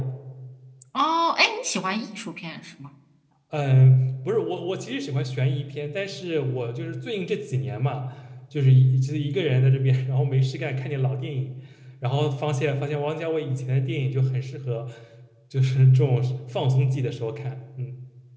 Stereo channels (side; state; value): both; identical; correlation 1.00